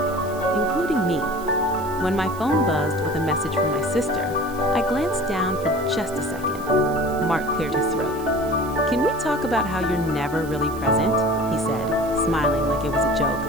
including me. When my phone buzzed with a message from my sister, I glanced down for just a second. Mark cleared his throat. "Can we talk about how you're never really present?" he said, smiling like it was a joke.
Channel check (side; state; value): right; noise; hiss, 19 dB below the sound